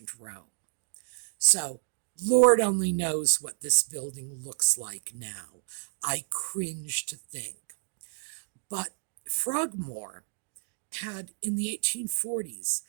Rome. So, Lord only knows what this building looks like now. I cringe to think. But Frogmore had, in the 1840s,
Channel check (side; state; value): left; silent; digital silence